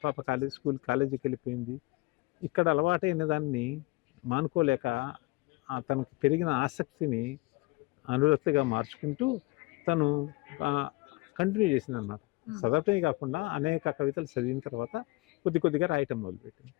పాప కాలేజీకి వెళ్ళిపోయింది. ఇక్కడ అలవాటైన దాన్ని మానుకోలేక తనకి పెరిగిన ఆసక్తిని అనురక్తిగా మార్చుకుంటూ తను కంటిన్యూ చేసింది అనమాట. చదవటమే కాకుండా అనేక కవితలు చదివిన తర్వాత కొద్దిగా రాయటం మొదలుపెట్టింది.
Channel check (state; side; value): quieter; right; 23.5 dB